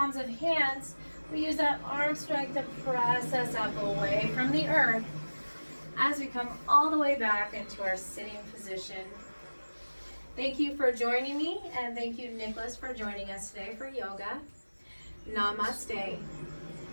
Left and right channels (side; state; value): both; inverted; correlation -1.00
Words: of hands, we use that arm strength to press us up away from the earth as we come all the way back into our sitting position. Thank you for joining me, and thank you, Nicholas, for joining us today for yoga. Namaste.